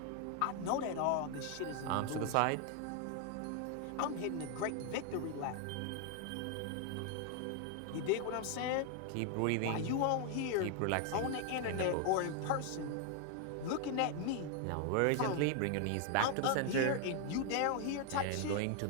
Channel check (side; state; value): both; different; correlation 0.00